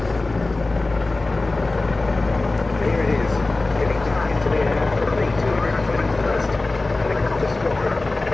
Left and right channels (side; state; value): right; quieter; 3.2 dB